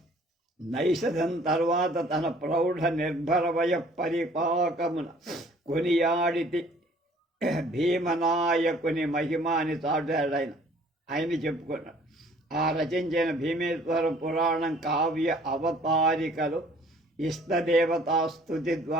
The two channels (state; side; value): normal; both; correlation 0.56